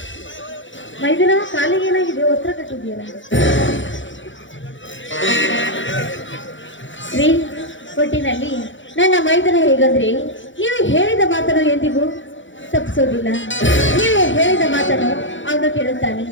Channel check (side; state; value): right; late; 0.55 ms